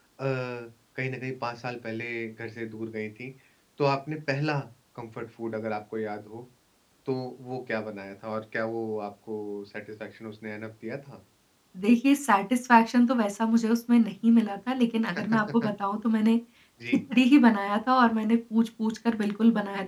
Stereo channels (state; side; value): identical; both; correlation 1.00